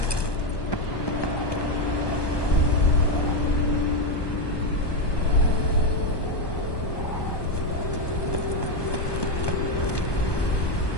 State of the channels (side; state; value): right; late; 1.2 ms